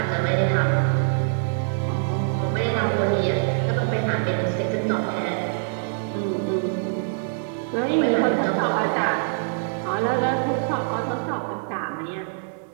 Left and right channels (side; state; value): left; silent; digital silence